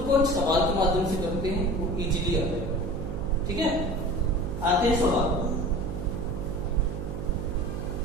को एक सवाल के माध्यम से करते हैं, वो इजीली आता है। ठीक है, आते हैं सवाल।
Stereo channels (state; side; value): noise; right; hum, 6 dB below the sound